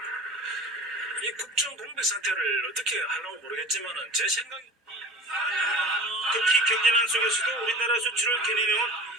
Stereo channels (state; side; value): normal; both; correlation 0.37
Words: 이 국정 공백 상태를 어떻게 하려고 모르겠지만은 제 생각에 특히 경제난 속에서도 우리나라 수출을 견인해온